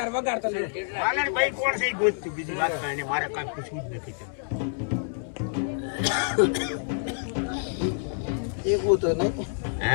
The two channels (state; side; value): silent; right; 60 dB below the other